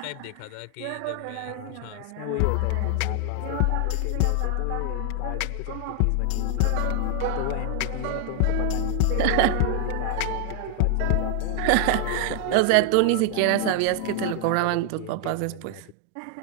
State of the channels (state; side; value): different; both; correlation 0.00